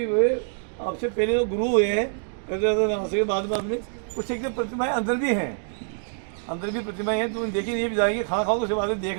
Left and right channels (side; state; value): left; silent; digital silence